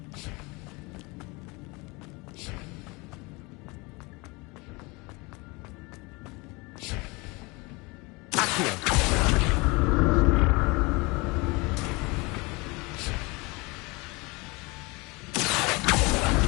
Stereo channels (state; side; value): quieter; right; 26.0 dB